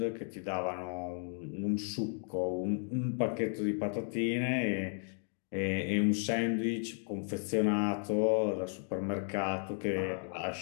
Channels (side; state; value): right; silent; 55 dB below the other